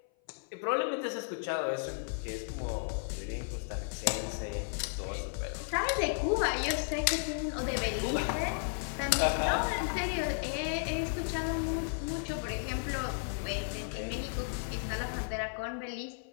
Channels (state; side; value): silent; right; 55 dB below the other